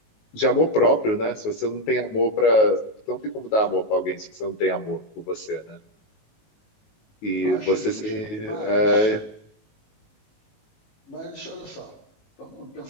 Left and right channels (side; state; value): right; late; 19 ms